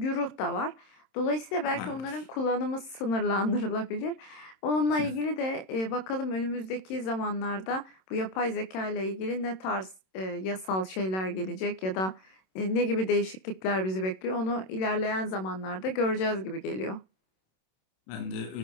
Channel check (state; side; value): late; right; 27 ms